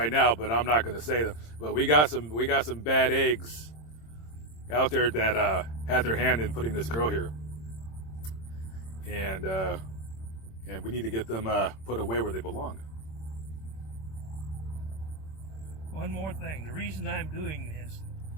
now, but I'm not going to say them. But we got some bad eggs out there that had their hand in putting this girl here, and we need to get them put away where they belong. one more thing, the reason I'm doing this,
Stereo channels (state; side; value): late; right; 26 ms